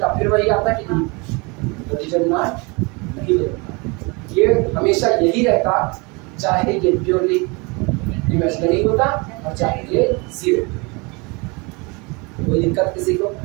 फिर वही आता कि नहीं? तो डिटरमिनेंट नहीं होता। ये हमेशा यही रहता, चाहे ये प्योरली इमेजिनरी होता और चाहे ये 0। कोई दिक्कत किसी को?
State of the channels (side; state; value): left; quieter; 28.7 dB